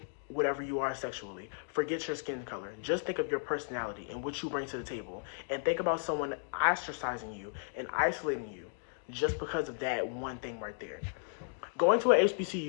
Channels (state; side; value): silent; right; digital silence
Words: whatever you are sexually. Forget your skin color. Just think of your personality and what you bring to the table. And think about someone ostracizing you and isolating you just because of that one thing right there. Going to a